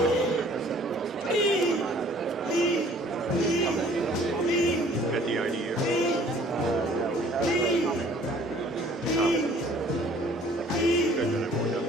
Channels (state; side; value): normal; both; correlation 0.54